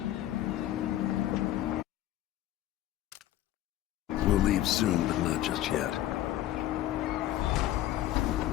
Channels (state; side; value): quieter; right; 13.5 dB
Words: We'll leave soon, but not just yet.